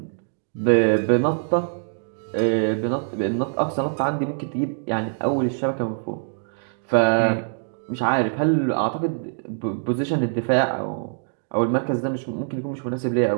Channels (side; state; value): left; silent; digital silence